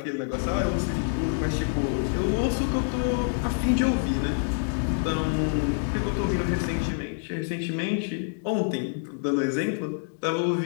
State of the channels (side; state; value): right; silent; digital silence